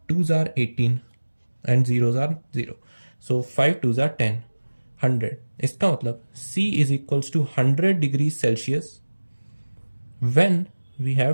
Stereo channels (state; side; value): inverted; both; correlation -1.00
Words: 2s are 18 and 0s are 0, so 5 2s are 10, 100। इसका मतलब C is equals to 100 degrees Celsius when we